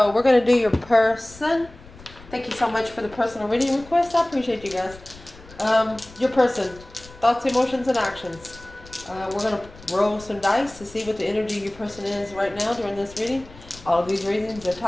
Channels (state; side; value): noise; left; rumble, 20 dB below the sound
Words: we're gonna do your person. Thank you so much for the personal reading request. I appreciate you guys. Your person, thoughts, emotions, and actions. We're gonna roll some dice to see what the energy of your person is right now during this reading. All of these readings are